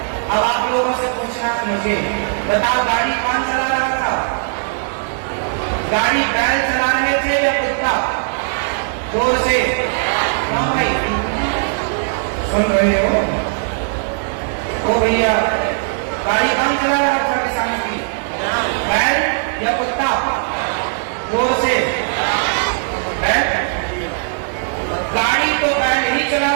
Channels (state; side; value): silent; left; 67 dB below the other